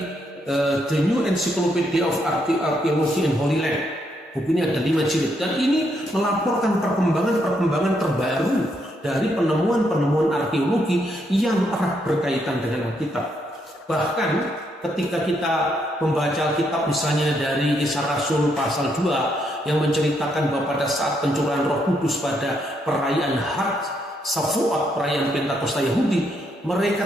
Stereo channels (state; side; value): normal; both; correlation 0.76